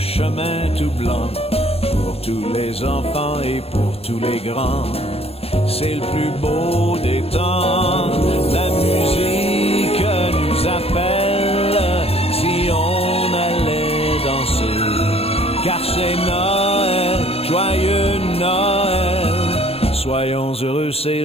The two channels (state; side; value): late; right; 0.28 ms